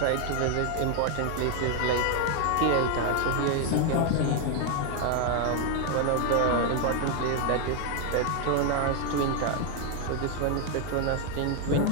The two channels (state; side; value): different; both; correlation 0.01